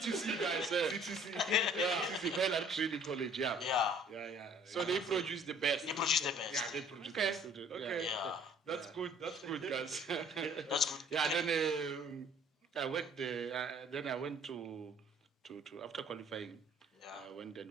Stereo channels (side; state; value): both; normal; correlation 0.55